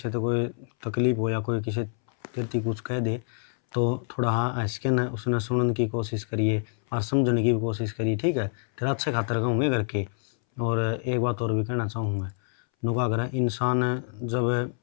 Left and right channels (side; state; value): right; silent; 60 dB below the other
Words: तो कोई तकलीफ हो या कोई किसी तेरती कुछ कह दे तो थोड़ा हाँ हंस के न उसने सुनने की कोशिश करिए और समझने की भी कोशिश करिए, ठीक है? तेरा अच्छे खातर कहूँगे करके। और एक बात और भी कहना चाहूँ मैं, नुका अगर इंसान जब